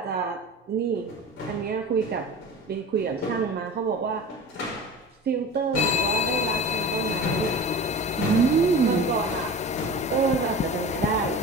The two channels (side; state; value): both; normal; correlation 0.35